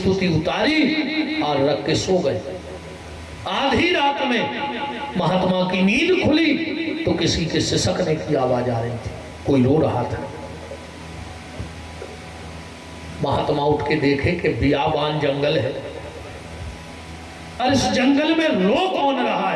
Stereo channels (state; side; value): identical; both; correlation 1.00